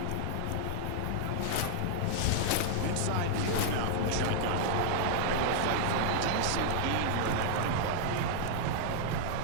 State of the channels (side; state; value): both; different; correlation -0.01